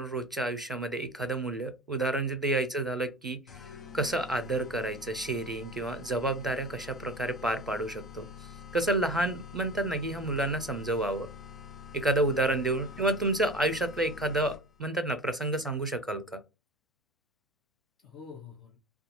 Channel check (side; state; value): both; normal; correlation 0.36